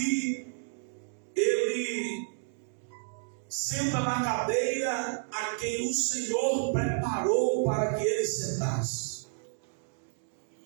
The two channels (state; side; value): silent; left; digital silence